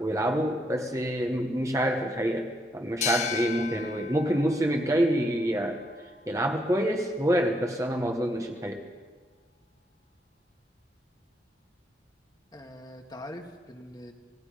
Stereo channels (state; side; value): normal; both; correlation 0.75